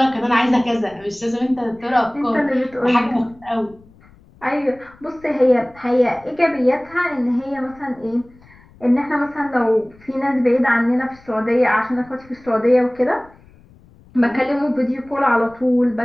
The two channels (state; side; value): noise; left; rumble, 27 dB below the sound